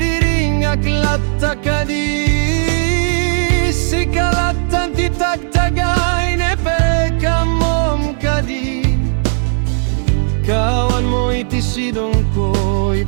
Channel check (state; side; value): silent; left; 62 dB below the other